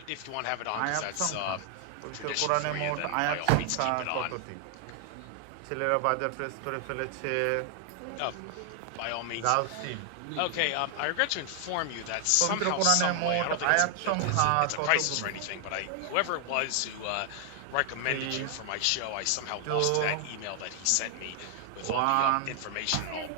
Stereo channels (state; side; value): different; both; correlation 0.00